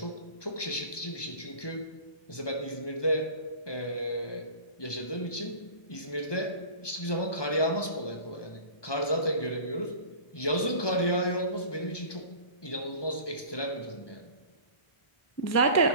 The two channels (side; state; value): right; late; 1.2 ms